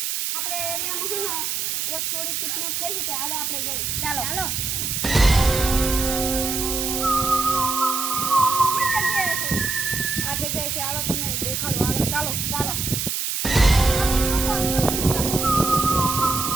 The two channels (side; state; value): right; noise; hiss, 1 dB below the sound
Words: આપણે એરિયામાં છે ને એક છોડી કિડનેપ થઈ છે. હાલો આપણે જઈએ. ચાલો ચાલો. આ જગ્યાએ છે. હાલો તમને દેખાડો. હાલો ચાલો ચાલો.